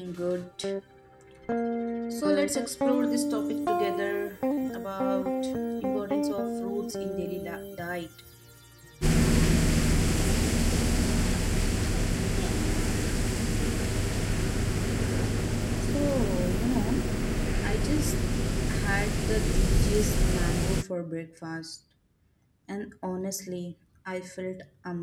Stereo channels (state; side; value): identical; both; correlation 1.00